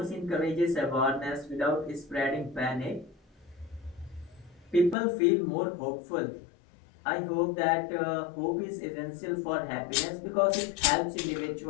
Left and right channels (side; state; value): right; drops out; at 5.0 s